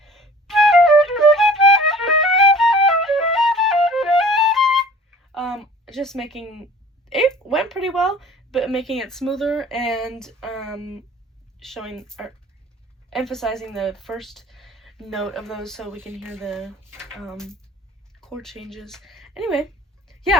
just making it went pretty well, but making it smoother and showing or emphasizing the first note of those so we can hear the chord changes. Anyway,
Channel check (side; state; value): both; normal; correlation 0.48